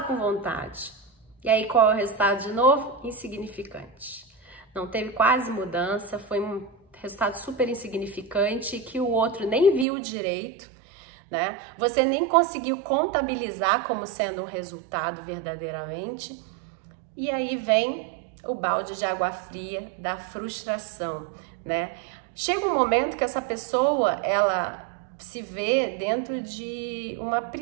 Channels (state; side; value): drops out; left; at 9.9 s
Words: com vontade. E aí qual é o resultado de novo? Insignificante. Não teve quase mudança, foi um resultado super insignificante que o outro nem viu direito, né? Você nem conseguiu contabilizar como sendo um resultado verdadeiramente. E aí vem o balde de água fria da frustração, né? Chega um momento que essa pessoa, ela se vê dentro de uma